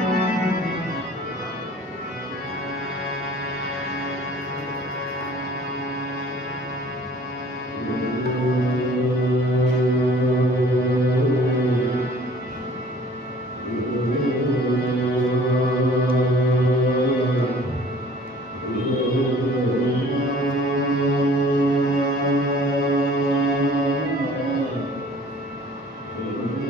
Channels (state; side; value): normal; both; correlation 0.51